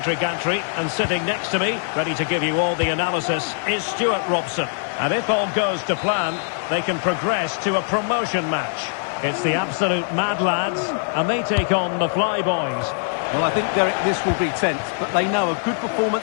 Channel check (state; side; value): silent; right; digital silence